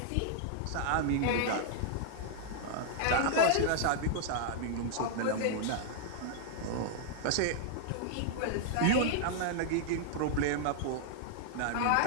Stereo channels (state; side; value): different; both; correlation -0.01